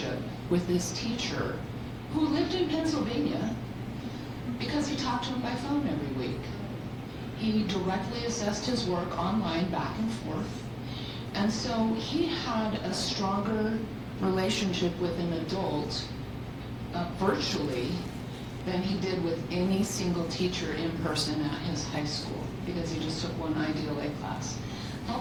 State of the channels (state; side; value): identical; both; correlation 1.00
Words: with this teacher who lived in Pennsylvania because he talked to him by phone every week. He directly assessed his work online back and forth. And so he had a stronger relationship with an adult virtually than he did with any single teacher in person at his high school because he just took one IDLA class.